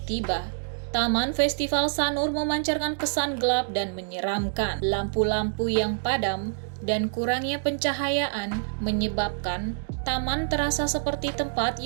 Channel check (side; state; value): left; silent; digital silence